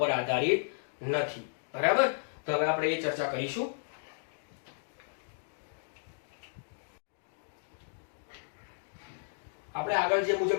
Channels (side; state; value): right; silent; digital silence